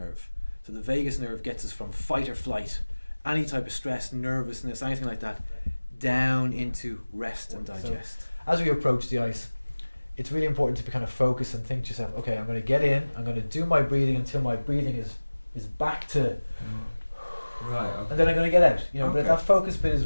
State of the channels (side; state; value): both; inverted; correlation -1.00